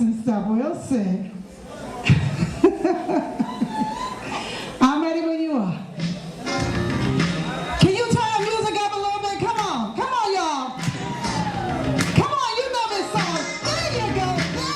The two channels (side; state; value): both; identical; correlation 1.00